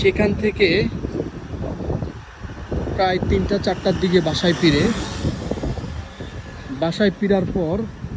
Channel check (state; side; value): identical; both; correlation 1.00